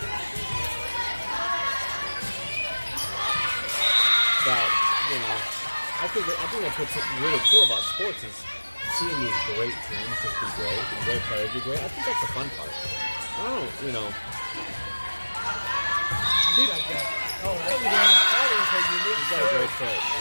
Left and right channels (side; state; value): both; inverted; correlation -1.00